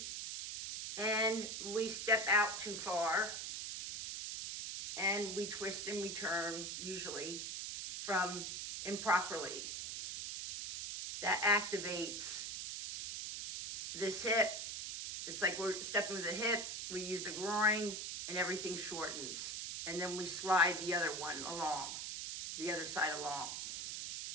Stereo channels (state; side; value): noise; right; hiss, 5 dB below the sound